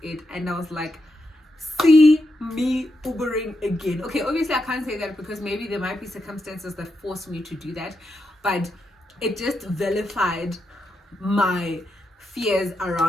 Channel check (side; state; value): both; normal; correlation 0.84